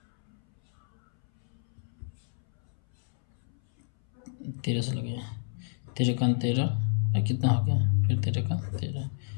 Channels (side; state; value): right; silent; 58 dB below the other